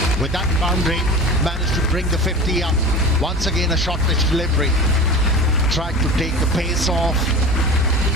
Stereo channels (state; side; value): normal; both; correlation 0.33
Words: With that boundary, managed to bring the 50 up. Once again, a short pitch delivery. Tried to take the pace off,